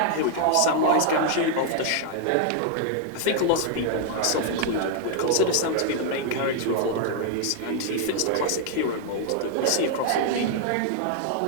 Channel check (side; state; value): both; different; correlation 0.00